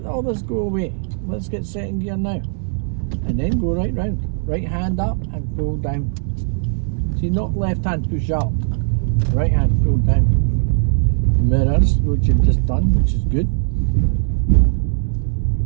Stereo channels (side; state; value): left; silent; 65 dB below the other